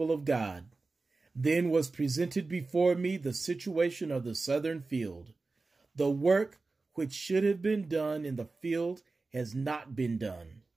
of God. Then was presented before me the situation of the Southern field. The work which should have been done in the field has not been done.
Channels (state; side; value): quieter; left; 3.7 dB